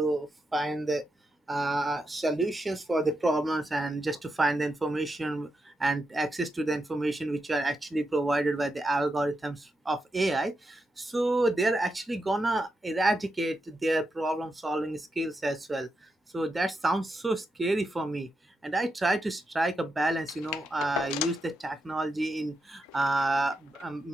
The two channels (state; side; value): normal; both; correlation 0.85